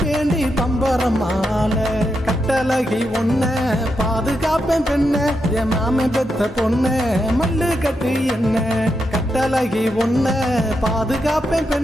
பம்பரமால. கட்டழகி ஒன்ன பாதுகாப்பேன் பெண்ண, என் மாம பெத்த பொண்ண மல்லு கட்டு என்ன. கட்டழகி ஒன்ன பாதுகாப்பேன்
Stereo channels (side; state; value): both; normal; correlation 0.84